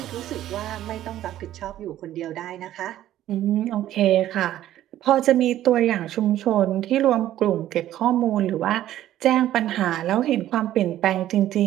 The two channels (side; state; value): left; quieter; 13.0 dB